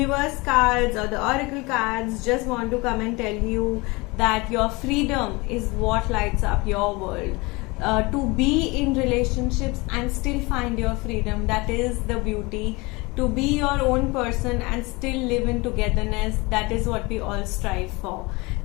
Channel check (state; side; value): quieter; right; 24.9 dB